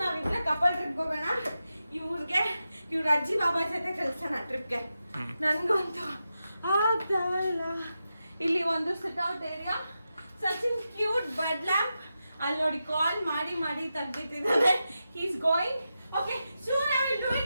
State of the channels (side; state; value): both; inverted; correlation -0.90